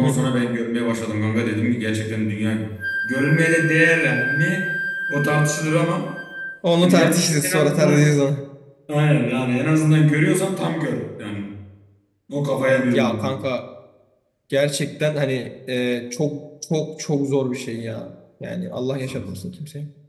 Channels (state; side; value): identical; both; correlation 1.00